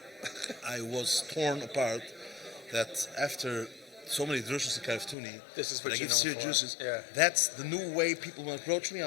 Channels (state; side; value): drops out; right; at 5.2 s